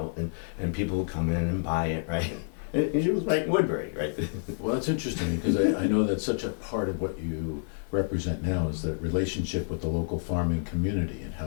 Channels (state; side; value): silent; right; 59 dB below the other